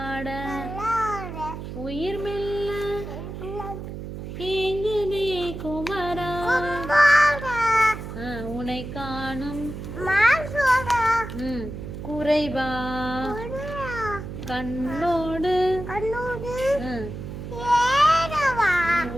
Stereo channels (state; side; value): noise; right; hum, 9 dB below the sound